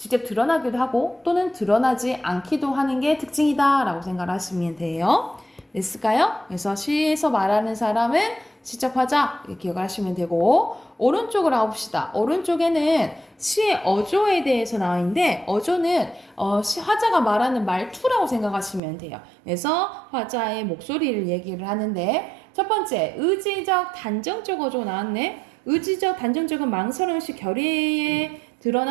드러나기도 하고 또는 드러나지 않기도 하는 게 특징이다 라고 생각하시면 돼요. 됐을까요? 그래서 시에서 말하는 사람은 시적 화자 이렇게 기억을 하시면 되고 오른쪽으로 가봅시다. 오른쪽에는 시의 어조에 대해서 나와 있는데 어조는 화자가 말하는 말투라고 생각하시면 돼요. 그래서 화자의 목소리를 얘기를 하는데 첫 번째 의지적 단정적 어조 나왔네. 의지적 단정적은 망설임없이 결의에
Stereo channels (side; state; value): left; drops out; at 18.8 s